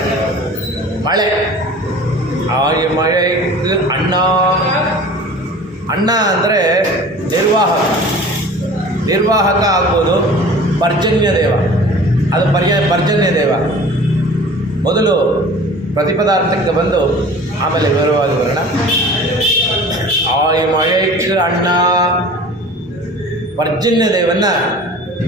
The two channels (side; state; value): both; normal; correlation 0.42